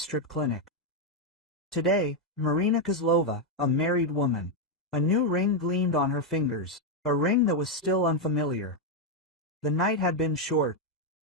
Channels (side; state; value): both; normal; correlation 0.02